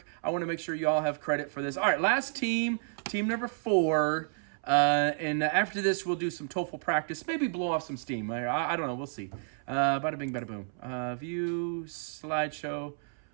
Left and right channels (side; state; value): left; silent; 57 dB below the other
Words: I want to make sure you all have credit for this. All right, last team number 4. And after this, we'll do some TOEFL practice. Maybe blow off some steam. I don't know. We'll see. Bada bing, bada boom. View, slideshow.